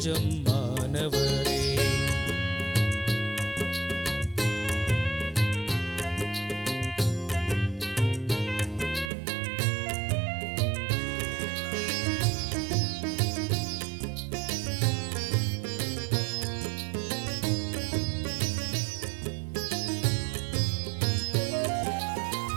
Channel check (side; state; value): left; drops out; at 9.1 s